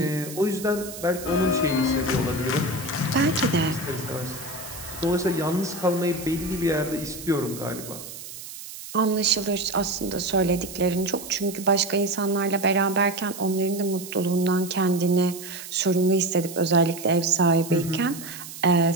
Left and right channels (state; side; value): noise; right; hiss, 12 dB below the sound